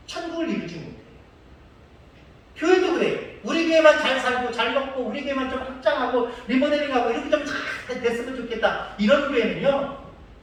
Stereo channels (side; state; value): both; identical; correlation 1.00